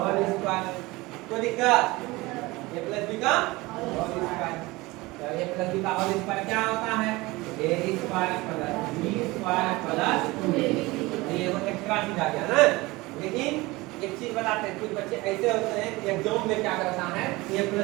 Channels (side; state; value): left; quieter; 21.6 dB